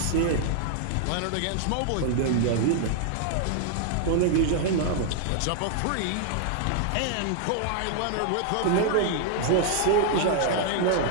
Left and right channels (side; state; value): both; different; correlation 0.00